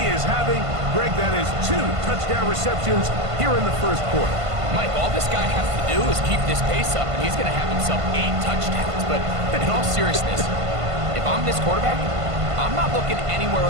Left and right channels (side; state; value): left; late; 1.5 ms